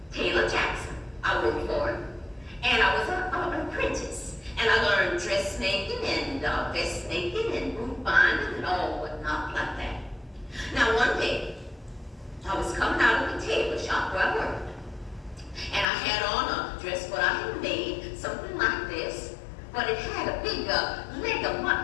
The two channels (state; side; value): drops out; right; at 15.9 s